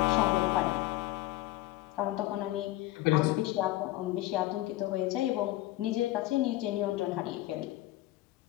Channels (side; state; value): right; quieter; 16.9 dB